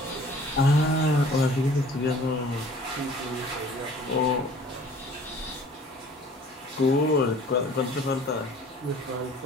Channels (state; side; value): normal; both; correlation 0.50